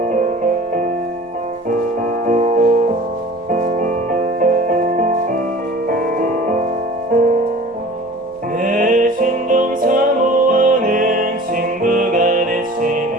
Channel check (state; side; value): noise; left; rumble, 28 dB below the sound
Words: 내 신종 사모하는 친구가